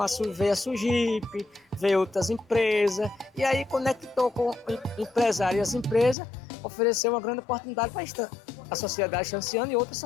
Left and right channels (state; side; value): drops out; right; at 6.2 s